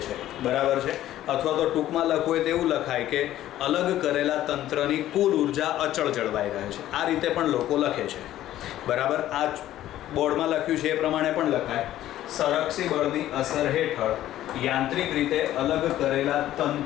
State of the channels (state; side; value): quieter; right; 13.3 dB